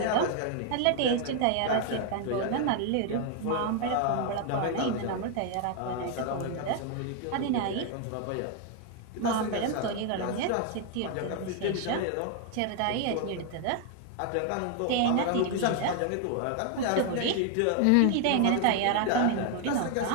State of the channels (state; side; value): different; both; correlation 0.00